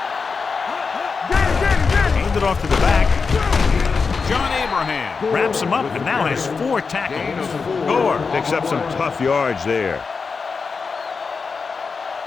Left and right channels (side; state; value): right; quieter; 5.0 dB